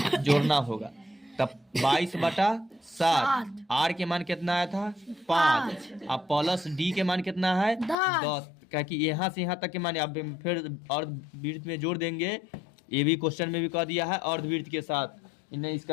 जोड़ना होगा। तब 22/7, आर के मान कितना आया था 5, अब प्लस डी के मान कितना है 10, क्या कि यहाँ से यहाँ तक के मान अब फिर अर्धवृत्त में जोड़ देंगे, ये भी क्वेश्चन में भी कह दिया है अर्धवृत्त के साथ, इन्हें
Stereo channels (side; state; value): right; drops out; at 8.0 s